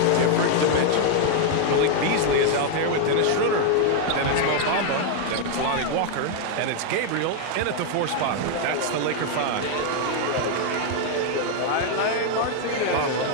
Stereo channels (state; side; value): different; both; correlation 0.00